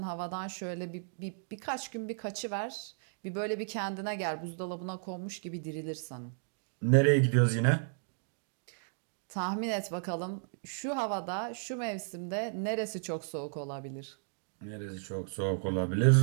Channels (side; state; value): left; silent; digital silence